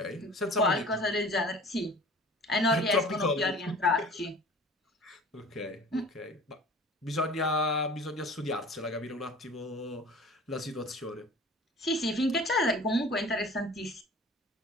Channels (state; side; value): normal; both; correlation 0.44